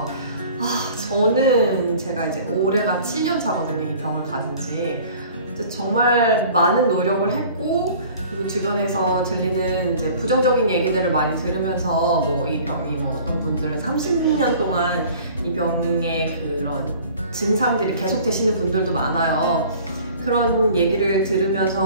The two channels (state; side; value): inverted; both; correlation -0.47